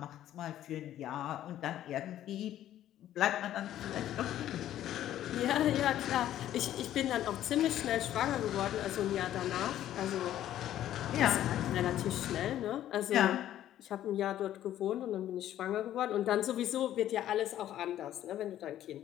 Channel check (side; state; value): right; quieter; 12.2 dB